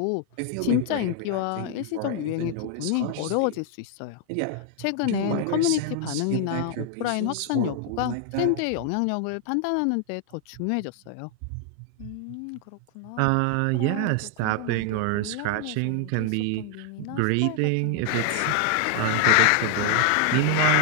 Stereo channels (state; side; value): different; both; correlation 0.00